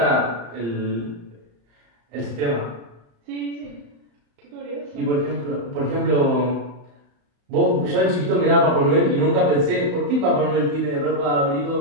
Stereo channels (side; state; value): left; late; 35 ms